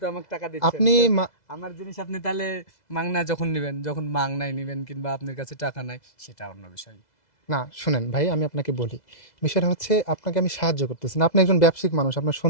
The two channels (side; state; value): right; late; 2.0 ms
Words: তো আমাকে টাকা দিচ্ছেন, আপনি তো আমার জিনিস আপনি তাহলে মাংনা যখন নেবেন, যখন মাংনায় নেবেন কিংবা আপনার কাছে টাকা নাই, সেটা অন্য বিষয়। না শুনেন ভাই, আমি আপনাকে বলি, বিষয়টা হচ্ছে আপনাকে আমি সাহায্য করতেছি না। আপনি একজন ব্যবসায়িক মানুষ, আপনার